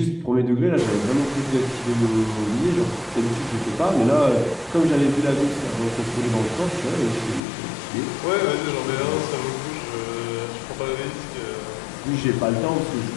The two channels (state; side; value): drops out; right; at 7.4 s